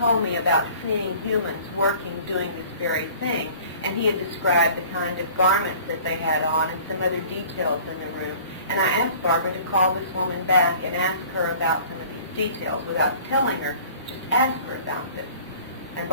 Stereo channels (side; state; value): both; inverted; correlation -0.48